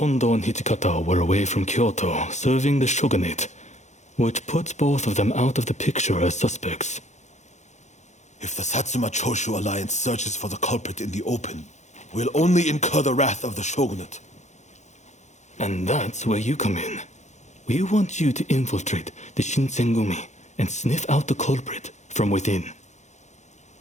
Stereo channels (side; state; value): right; late; 0.34 ms